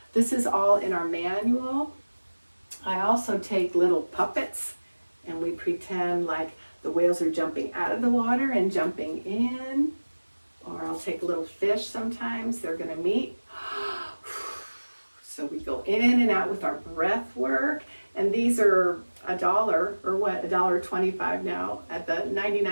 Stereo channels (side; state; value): both; inverted; correlation -1.00